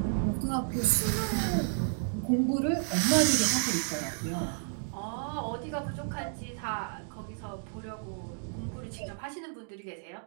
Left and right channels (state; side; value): silent; left; digital silence